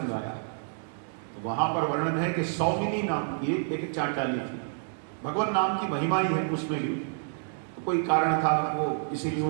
आया। तो वहां पर वर्णन है कि सौमिनी नाम की एक चांडाली थी। भगवान नाम की महिमा ही है उसमें भी। तो कोई कारण था, वो इसीलिए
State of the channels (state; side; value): silent; left; digital silence